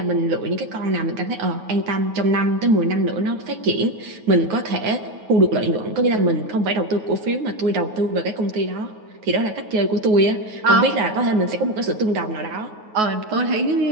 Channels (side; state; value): left; late; 9.4 ms